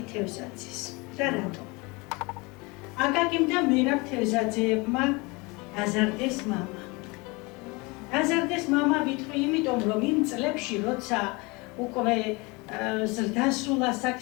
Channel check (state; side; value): quieter; right; 26.4 dB